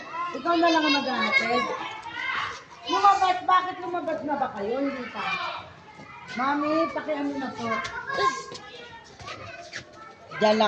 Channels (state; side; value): identical; both; correlation 1.00